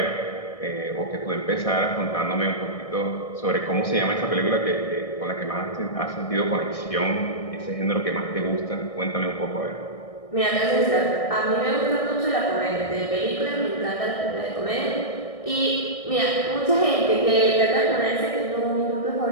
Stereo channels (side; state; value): right; late; 1.6 ms